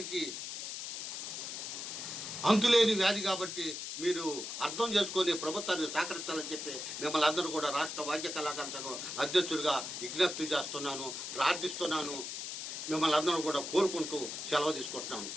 అంతులేని వ్యాధి కాబట్టి మీరు అర్థం చేసుకొని ప్రభుత్వాన్ని సహకరించాలని చెప్పి మిమ్మల్ని అందరూ కూడా రాష్ట్ర వాద్య కళాకార సంఘం అధ్యక్షుడిగా విజ్ఞప్తి చేస్తున్నాను, ప్రార్థిస్తున్నాను. మిమ్మల్ని అందరూ కూడా కోరుకుంటూ సెలవు తీసుకుంటున్నాను.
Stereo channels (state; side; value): noise; left; hiss, 6 dB below the sound